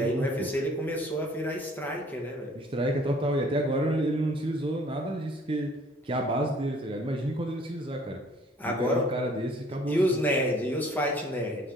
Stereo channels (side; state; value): both; normal; correlation 0.56